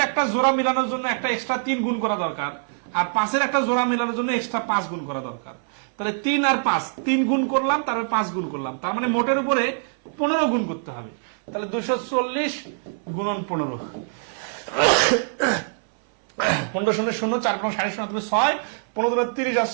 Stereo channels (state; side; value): silent; left; 63 dB below the other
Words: একটা জোড়া মিলানোর জন্য একটা এক্সট্রা 3 গুণ করা দরকার, আর 5-এর একটা জোড়া মেলানোর জন্য এক্সট্রা 5 গুণ করা দরকার। তাহলে 3 আর 5, 3 গুণ করলাম, তারপরে 5 গুণ করলাম, তার মানে মোটের উপরে 15 গুণ করতে হবে। তাহলে 240 গুণন 15, 15 শূন্য শূন্য, 4 5 0 হবে 6, 15 30 আর